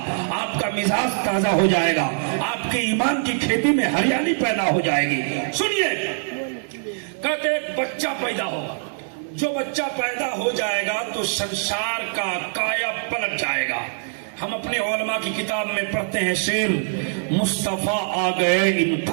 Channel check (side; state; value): left; silent; digital silence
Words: آپ کا مزاج تازہ ہو جائے گا، آپ کے ایمان کی کھیتی میں ہریالی پیدا ہو جائے گی. سنیے، کہتے ایک بچہ پیدا ہوگا، جو بچہ پیدا ہو جائے گا تو سنسار کا کایا پلٹ جائے گا. ہم اپنے علماء کی کتاب میں پڑھتے ہیں شعر، مصطفیٰ آ گئے